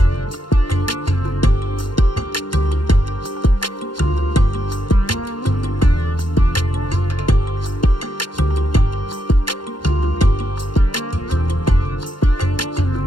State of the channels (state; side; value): late; right; 0.71 ms